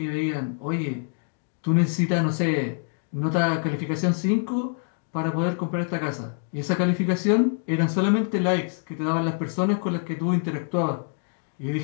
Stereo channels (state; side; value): silent; right; 61 dB below the other